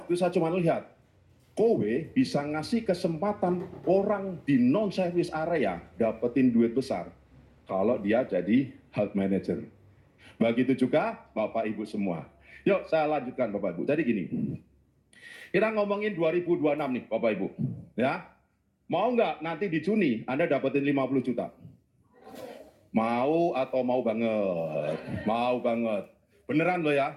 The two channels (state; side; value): identical; both; correlation 1.00